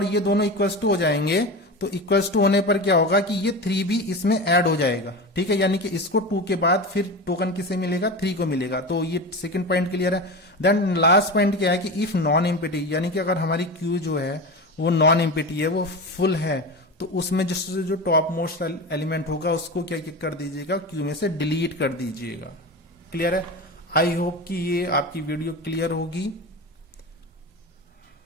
ये दोनों इक्वल्स टू हो जाएंगे तो इक्वल्स टू होने पर क्या होगा कि ये 3 भी इसमें ऐड हो जाएगा, ठीक है, यानी कि इसको 2 के बाद फिर टोकन किसे मिलेगा, 3 को मिलेगा। तो ये सेकंड पॉइंट क्लियर है। देन लास्ट पॉइंट क्या है कि इफ नॉन एम्प्टी, यानी कि अगर हमारी क्यू जो है वो नॉन एम्प्टी है, वो फुल है, तो उसमें जो टॉप मोस्ट एलिमेंट होगा उसको क्या कर दीजिएगा, क्यू में से डिलीट कर दीजिएगा। क्लियर है। आई होप कि ये आपकी वीडियो क्लियर होगी।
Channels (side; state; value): both; normal; correlation 0.25